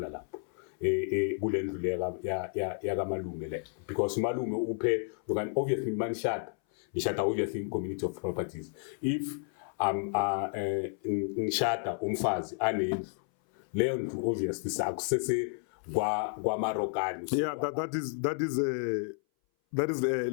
lapho kule ndlu leyo ya kamalume le because malume uphe obviously manishada nishada obviously in community of properties if ngishada umfazi anendlu leyo ndlu obviously sakusese kwa Marokani. Yeah, that is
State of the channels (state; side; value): silent; right; 57 dB below the other